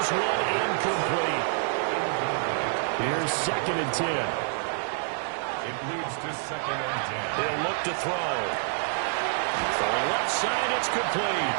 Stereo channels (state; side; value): silent; left; 60 dB below the other